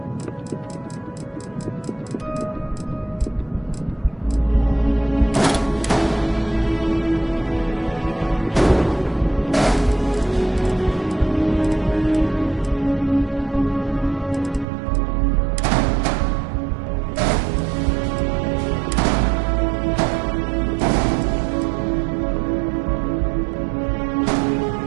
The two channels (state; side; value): drops out; left; at 14.7 s